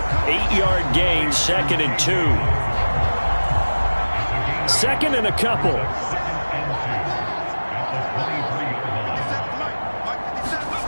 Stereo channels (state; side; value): inverted; both; correlation -1.00